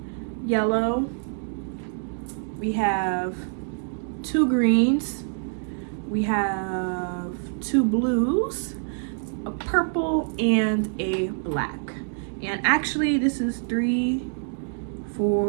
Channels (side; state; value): left; silent; digital silence